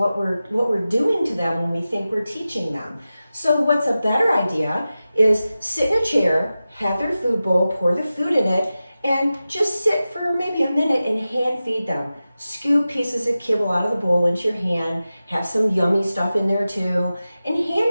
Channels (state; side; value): inverted; both; correlation -0.94